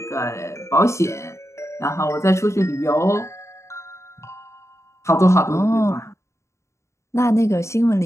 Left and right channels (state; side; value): late; right; 0.14 ms